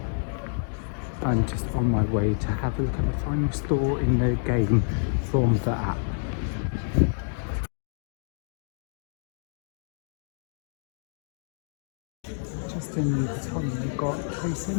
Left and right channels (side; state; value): right; silent; digital silence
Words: I'm just on my way to have a look at the final store in the game from the app. Just in the Vuitton, we've got Trace in